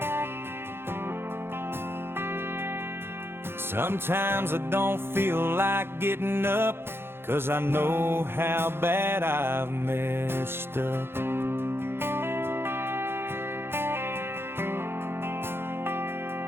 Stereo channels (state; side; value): late; left; 0.11 ms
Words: Sometimes I don't feel like getting up, 'cause I know how bad I've messed up.